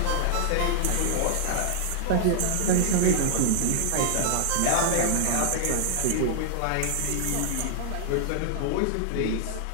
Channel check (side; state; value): both; different; correlation -0.01